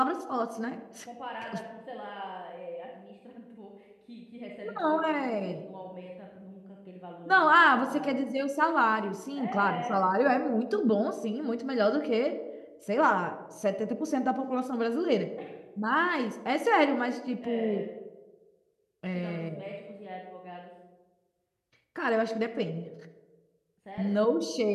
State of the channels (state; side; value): identical; both; correlation 1.00